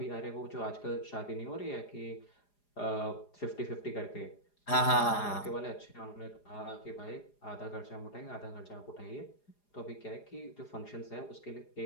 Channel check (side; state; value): right; late; 4.9 ms